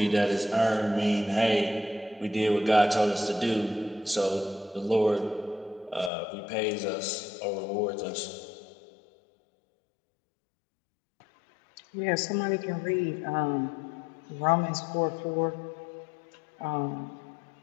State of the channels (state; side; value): drops out; right; at 6.1 s